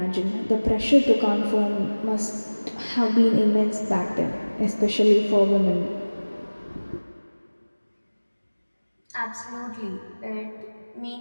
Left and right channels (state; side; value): inverted; both; correlation -1.00